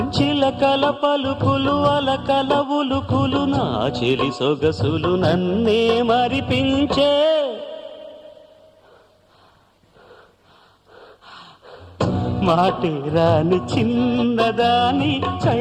చిలకల పలుకులు అలకల ఉలుకులు నా చెలి సొగసులు నన్నే మరిపించే మాటే రాని చిన్నదాని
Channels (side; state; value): both; identical; correlation 1.00